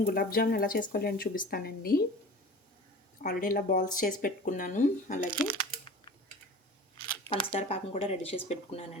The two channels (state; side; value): normal; both; correlation 0.39